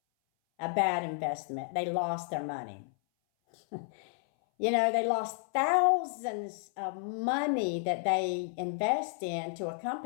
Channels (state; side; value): silent; right; 57 dB below the other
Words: a bad investment. They lost their money. They lost thousands of money that they invest into a